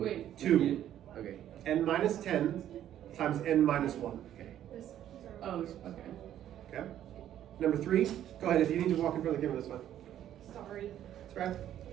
2. Okay. N minus 10 times n minus 1. Okay. Oh, okay. Okay? Number 3, go ahead. If you need to walk in front of the camera, that's fine. Sorry. That's right.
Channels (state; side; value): quieter; left; 11.3 dB